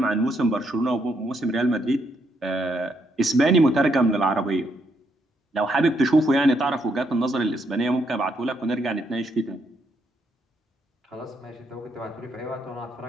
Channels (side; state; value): both; normal; correlation 0.76